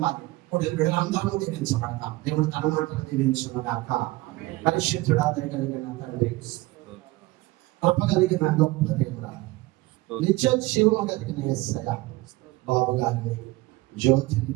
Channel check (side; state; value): left; quieter; 19.9 dB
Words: ఇప్పుడు బిడ్డలందరూ దీవించబడతాం. దేవుడు తన మాటలు దీవించుగాక. పరిశుద్ధుడా దయగలిగిన తండ్రి, కృప కలిగిన గొప్ప దేవుడా, నిత్య జీవము కలిగిన యేసయ్య, బాబు గారిని జ్యోతిని